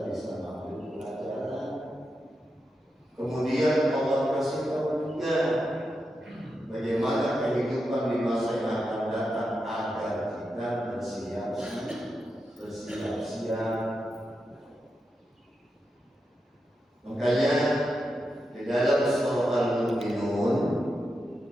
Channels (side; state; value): both; normal; correlation 0.87